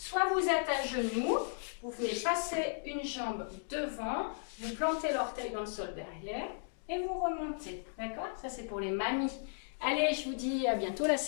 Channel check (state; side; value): silent; right; digital silence